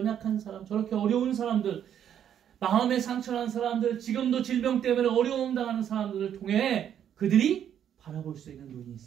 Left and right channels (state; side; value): quieter; left; 9.5 dB